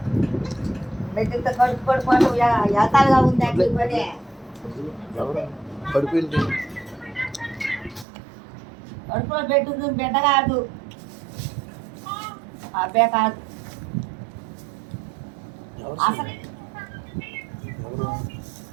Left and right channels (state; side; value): drops out; left; at 8.1 s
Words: మెట్టితో కడుపు పడిపోవడం ఎతాలుగా ఉంది అంటే పని. కడుపులో పెట్టుంది, బిడ్డ కాదు, అబ్బే కాదు.